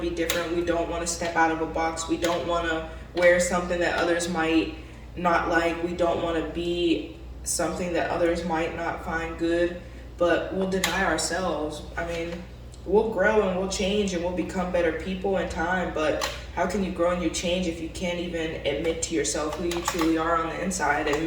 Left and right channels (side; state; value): both; identical; correlation 1.00